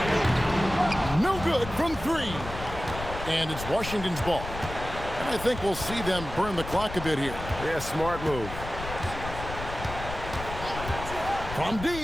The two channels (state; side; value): noise; left; rumble, 9 dB below the sound